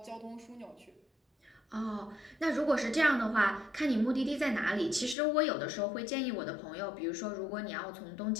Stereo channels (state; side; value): drops out; right; at 5.2 s